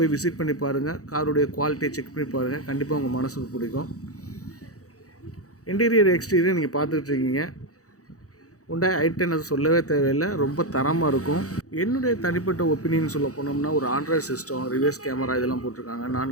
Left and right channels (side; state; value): right; late; 0.66 ms